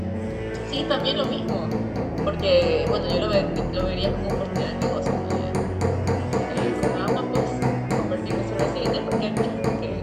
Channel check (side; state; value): both; identical; correlation 1.00